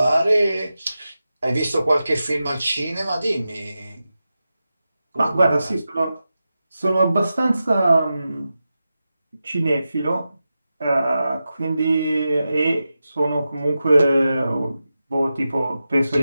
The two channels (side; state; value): both; inverted; correlation -0.92